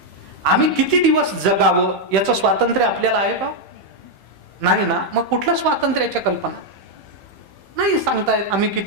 आम्ही किती दिवस जगावं याचं स्वातंत्र्य आपल्याला आहे का? नाही ना. मग कुठलं स्वातंत्र्याच्या कल्पना नाही सांगतायत. आम्ही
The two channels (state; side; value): late; left; 15 ms